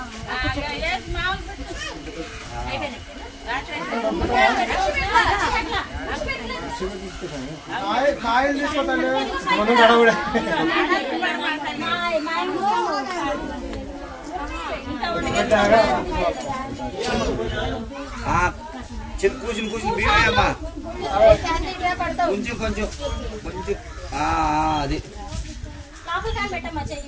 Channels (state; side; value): identical; both; correlation 1.00